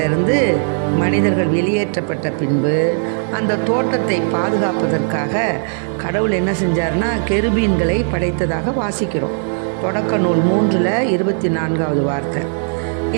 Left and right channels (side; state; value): left; silent; digital silence